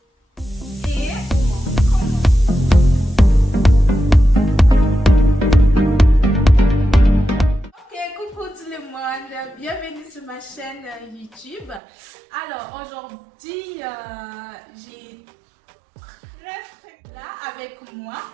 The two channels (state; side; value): drops out; left; at 11.8 s